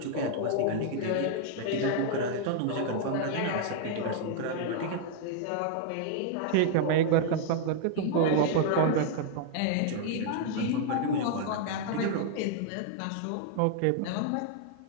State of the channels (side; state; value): both; different; correlation 0.00